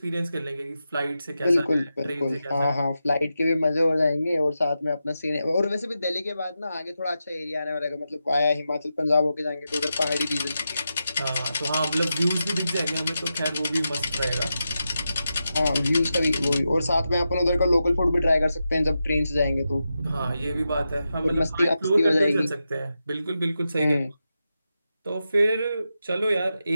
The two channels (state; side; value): inverted; both; correlation -0.89